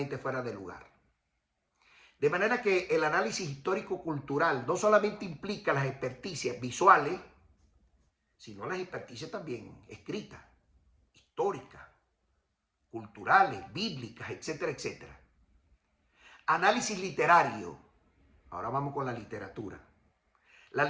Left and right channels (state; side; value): identical; both; correlation 1.00